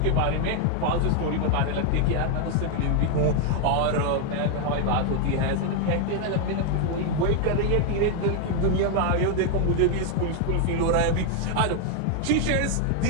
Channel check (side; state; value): both; different; correlation 0.01